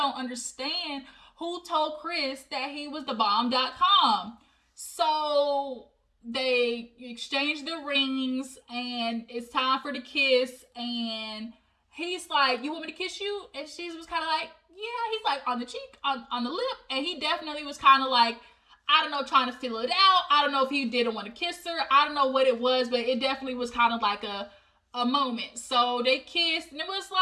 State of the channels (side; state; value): both; identical; correlation 1.00